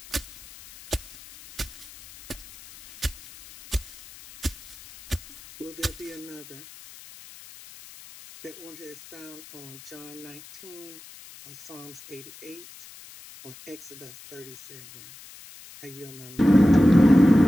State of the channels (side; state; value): left; noise; hiss, 19 dB below the sound